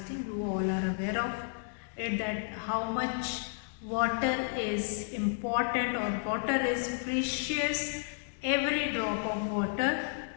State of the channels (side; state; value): right; silent; digital silence